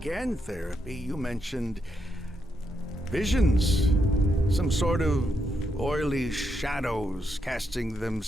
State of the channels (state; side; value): normal; both; correlation 0.81